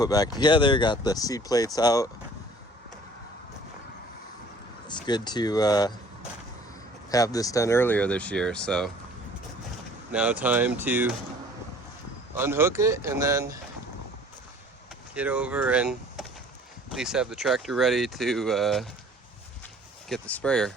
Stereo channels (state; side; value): normal; both; correlation 0.52